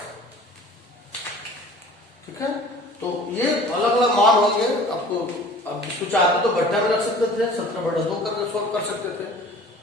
ठीक है, तो ये अलग अलग मान होंगे आपको। अब इसको चाहते तो बट्टा में रख सकते थे, 17/2 करके सोल्व कर सकते थे।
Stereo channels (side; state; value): both; normal; correlation 0.45